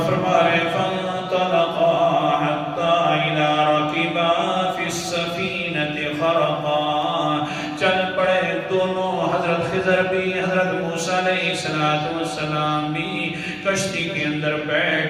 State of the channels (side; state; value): both; identical; correlation 1.00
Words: فرما رہے ہیں فانطلقا حتی اذا رکبا فی السفینۃ خرقا. چل پڑے دونوں، حضرت خضر بھی حضرت موسیٰ علیہ السلام بھی کشتی کے اندر